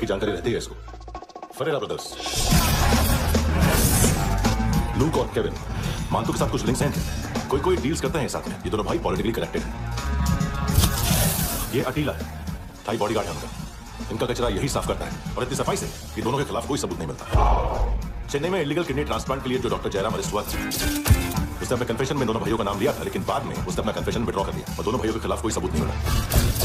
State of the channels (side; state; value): both; identical; correlation 1.00